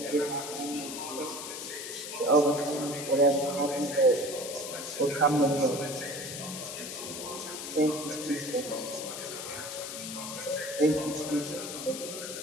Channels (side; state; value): left; noise; hiss, 7 dB below the sound